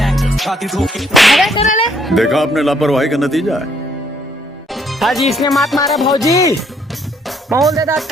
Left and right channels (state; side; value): normal; both; correlation 0.68